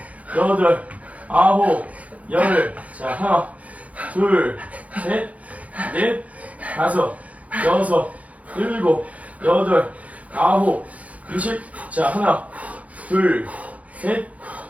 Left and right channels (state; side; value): late; left; 0.068 ms